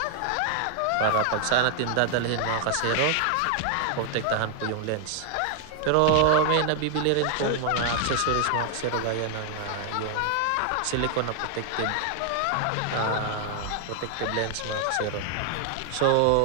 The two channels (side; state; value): both; different; correlation 0.00